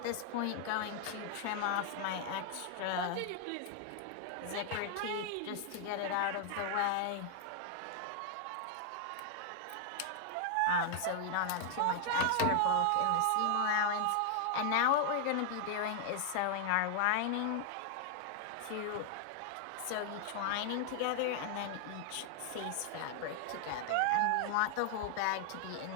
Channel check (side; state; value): both; different; correlation 0.00